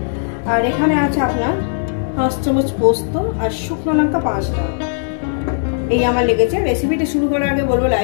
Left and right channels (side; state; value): right; silent; digital silence